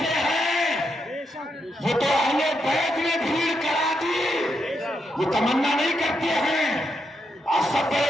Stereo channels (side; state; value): both; normal; correlation 0.81